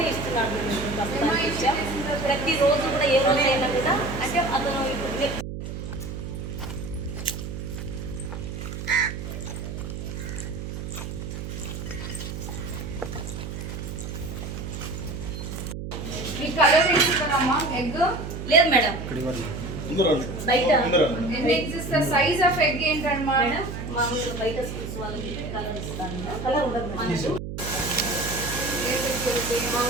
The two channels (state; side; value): noise; right; hum, 7 dB below the sound